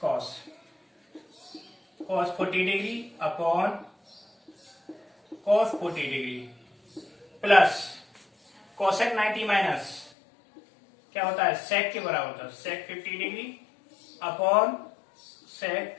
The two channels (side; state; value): right; drops out; at 10.1 s